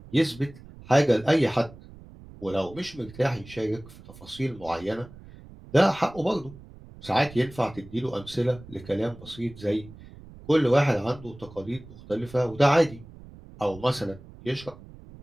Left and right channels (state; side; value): noise; right; rumble, 19 dB below the sound